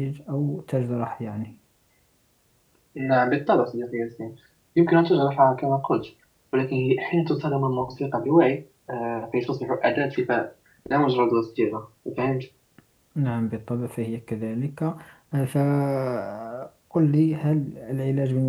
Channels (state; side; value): identical; both; correlation 1.00